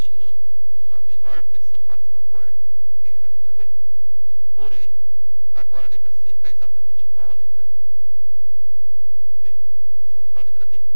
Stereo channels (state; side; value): inverted; both; correlation -1.00